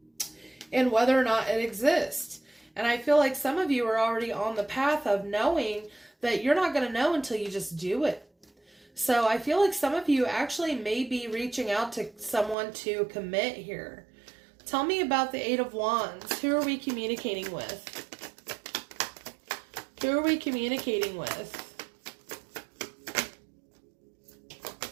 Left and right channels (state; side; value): drops out; left; at 12.6 s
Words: and whether or not it exists. And I feel like some of you are already on the path of knowing that you're not going to know until you just do it. So I feel like some of you actually may be reaching out to someone to commit here. Tell me about the Eight of Wands. Who are we communicating with? Who are we communicating with?